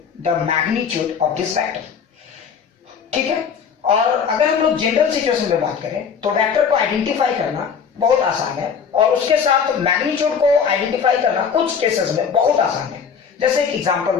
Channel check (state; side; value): quieter; right; 6.6 dB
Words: the magnitude of this vector. ठीक है, और अगर हम लोग जनरल सिचुएशन में बात करें तो वेक्टर को आइडेंटिफाई करना बहुत आसान है और उसके साथ मैग्नीट्यूड को आइडेंटिफाई करना कुछ केसेस में बहुत आसान है। जैसे एक एग्जांपल